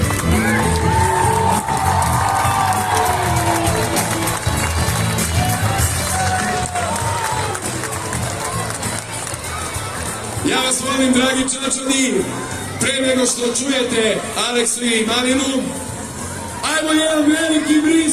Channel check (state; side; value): identical; both; correlation 1.00